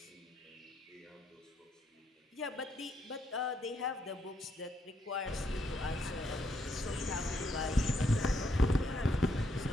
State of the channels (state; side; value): normal; both; correlation 0.76